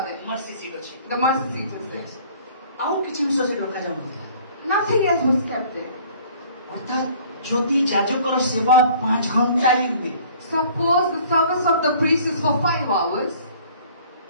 there. Mercy seat ଅଛି। The mercy seat is there. ଆଉ କିଛି ଜିନିଷ ସେଠି ରଖାଯାଉନଥିଲା। Nothing else was kept there. ଅର୍ଥାତ୍ ଯଦି ଯାଜକର ସେବା 5 ଘଣ୍ଟା ହିଁ ହୁଏ, Suppose the service of the priest is for 5 hours,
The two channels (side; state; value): both; inverted; correlation -0.52